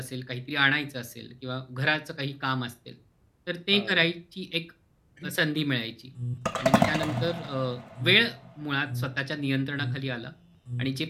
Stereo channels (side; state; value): both; identical; correlation 1.00